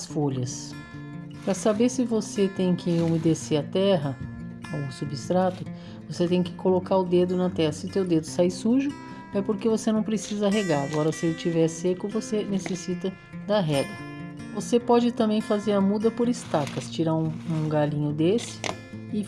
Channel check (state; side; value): identical; both; correlation 1.00